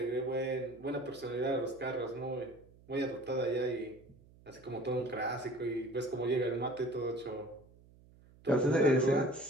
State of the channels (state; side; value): noise; right; hum, 25 dB below the sound